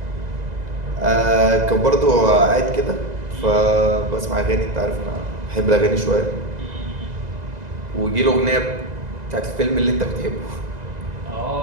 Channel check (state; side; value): late; left; 2.0 ms